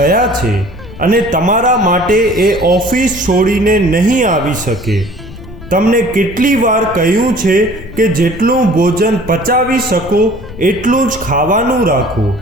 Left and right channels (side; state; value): left; noise; rumble, 16 dB below the sound